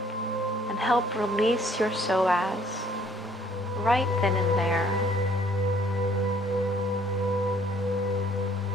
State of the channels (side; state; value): both; normal; correlation 0.60